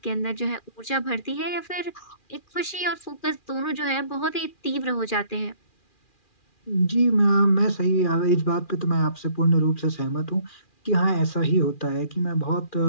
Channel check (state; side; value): late; right; 2.4 ms